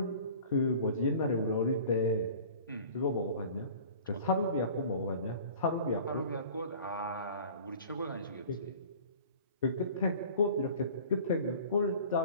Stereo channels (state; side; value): inverted; both; correlation -0.45